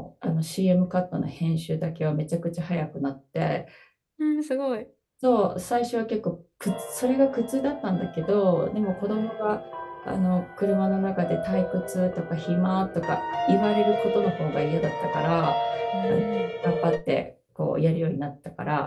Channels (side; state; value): both; identical; correlation 1.00